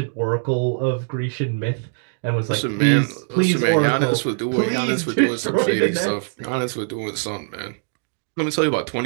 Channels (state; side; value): silent; left; digital silence